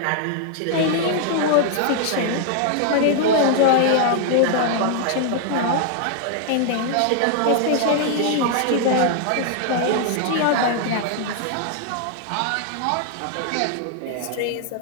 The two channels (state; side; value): different; both; correlation 0.00